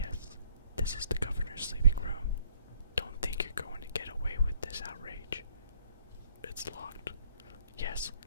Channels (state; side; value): inverted; both; correlation -0.62